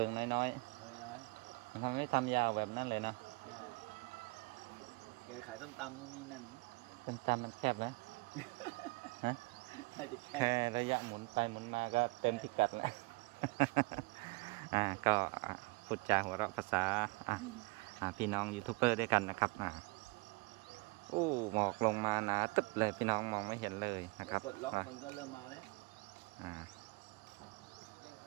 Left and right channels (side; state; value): left; quieter; 27.3 dB